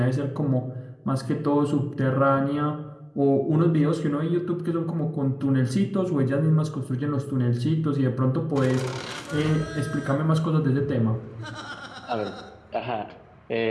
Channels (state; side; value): identical; both; correlation 1.00